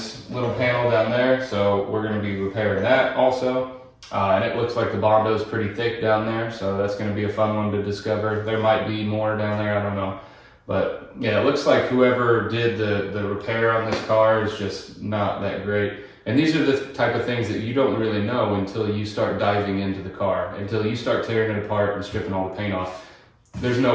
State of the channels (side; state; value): both; identical; correlation 1.00